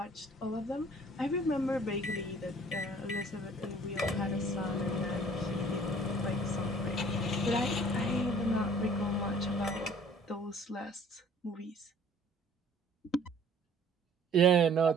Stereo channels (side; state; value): both; normal; correlation 0.53